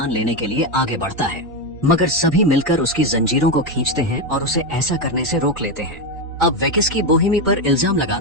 लेने के लिए आगे बढ़ता है, मगर सभी मिलकर उसकी जंजीरों को खींचते हैं और उसे ऐसा करने से रोक लेते हैं। अब वेकिस्की बोहेमी पर इल्जाम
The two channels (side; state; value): both; normal; correlation 0.10